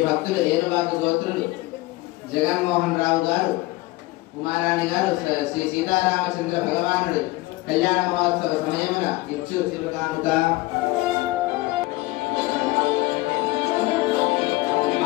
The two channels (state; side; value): quieter; right; 20.5 dB